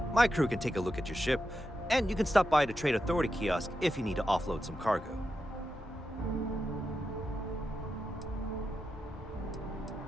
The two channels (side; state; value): both; normal; correlation 0.88